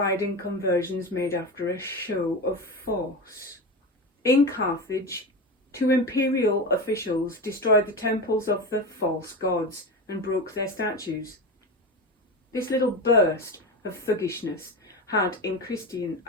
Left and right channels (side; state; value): both; normal; correlation 0.22